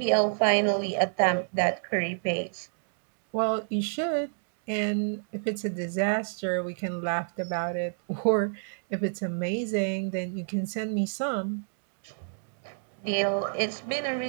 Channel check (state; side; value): silent; left; digital silence